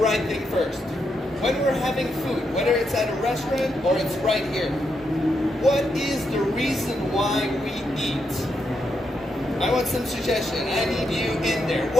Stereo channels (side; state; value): both; normal; correlation 0.82